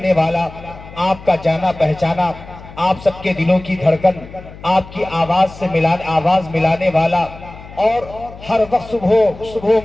والا، آپ کا جانا پہچانا، آپ سب کے دلوں کی دھڑکن، آپ کی آواز ملانے والا، اور ہر وقت صبح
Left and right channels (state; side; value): noise; left; hum, 17 dB below the sound